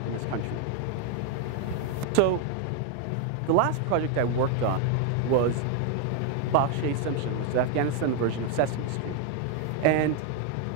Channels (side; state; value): both; different; correlation 0.01